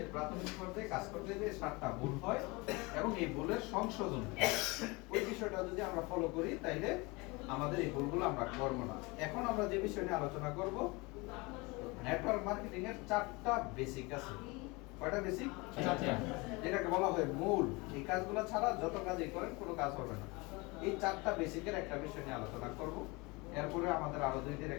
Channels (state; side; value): quieter; right; 25.6 dB